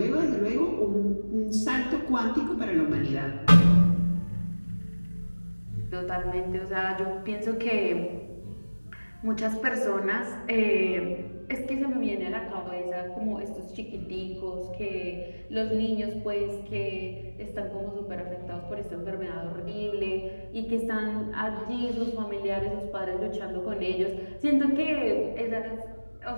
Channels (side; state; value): both; inverted; correlation -1.00